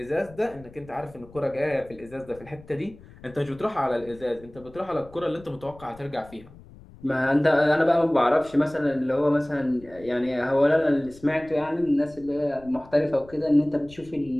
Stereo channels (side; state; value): left; noise; rumble, 22 dB below the sound